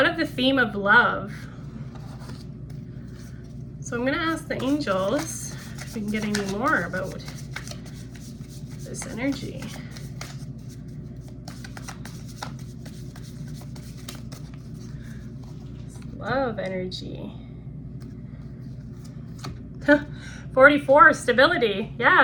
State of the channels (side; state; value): both; identical; correlation 1.00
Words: the theme of love. So I'm going to ask the angels if we can get any more about this energy? Love energy. 44, stability.